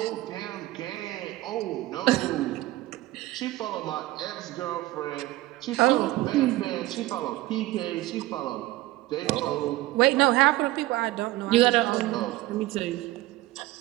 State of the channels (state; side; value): quieter; left; 17.7 dB